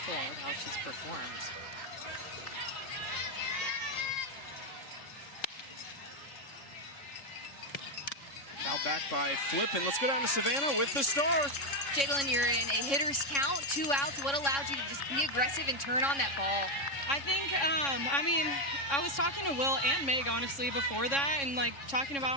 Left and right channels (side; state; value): right; late; 3.6 ms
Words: with how she's performed. Fouled back by Flippen. Let's go down to Savannah with the star. Jadlyn, you're in a hitter's count, 2 outs. What allowed you to just be aggressive and turn on that ball? I think, I was talking to Will and Meg, honestly, before that, and, like, talking